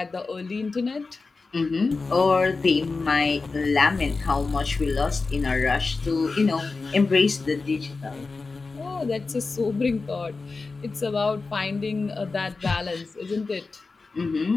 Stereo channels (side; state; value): right; quieter; 4.0 dB